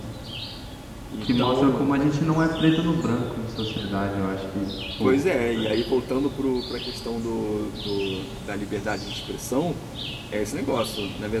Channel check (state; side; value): identical; both; correlation 1.00